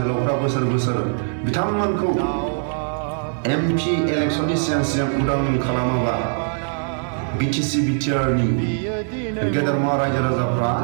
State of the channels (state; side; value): silent; left; 65 dB below the other